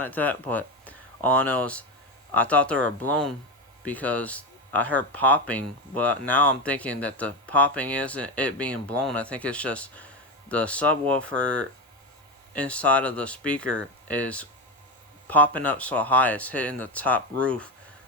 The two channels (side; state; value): both; normal; correlation 0.15